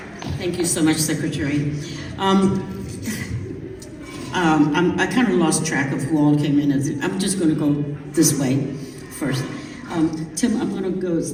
Thank you so much, Secretary. I kind of lost track of who all came in. I'm just going to go this way first. Tim, I'm going to go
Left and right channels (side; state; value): both; identical; correlation 1.00